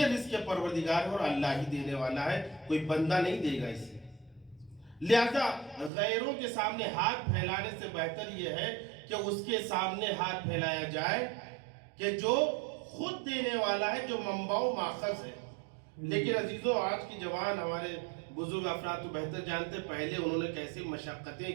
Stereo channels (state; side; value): drops out; left; at 5.9 s